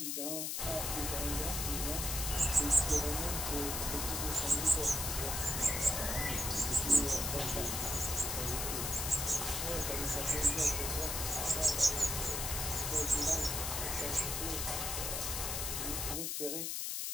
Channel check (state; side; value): noise; left; hiss, 1 dB below the sound